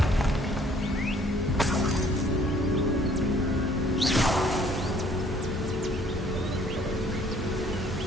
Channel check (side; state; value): both; normal; correlation 0.60